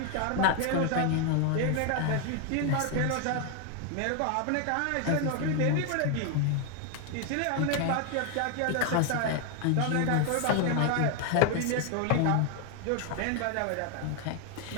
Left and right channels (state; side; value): different; both; correlation 0.00